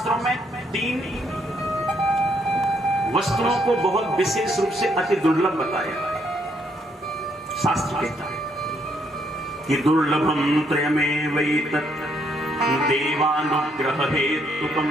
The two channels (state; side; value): normal; both; correlation 0.72